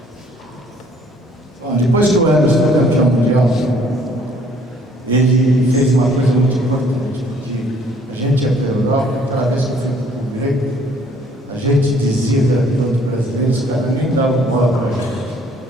Depois que o Emerson foi campeão mundial, ele fez uma coisa muito importante, porque a gente ia para a Europa, cada vez que eu fui para o Grego, a gente dizia para outros brasileiros, os caras nem davam bola para a gente.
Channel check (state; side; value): normal; both; correlation 0.60